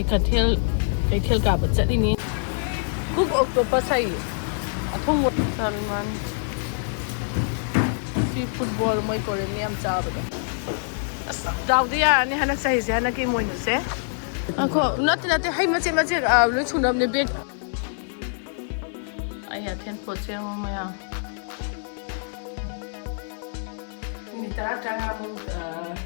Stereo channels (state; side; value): silent; right; 62 dB below the other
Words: kathel ka ba chadini cook octopus ai athong mo sarman si football moi kore ni am cha ba daw dia ni hanak sai je hanak Emoinu se ako not hai mache lu chunam ne bed ai ha ten po che mo ya ni tara tanga mo